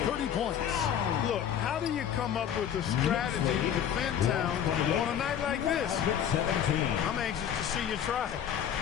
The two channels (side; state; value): right; quieter; 9.2 dB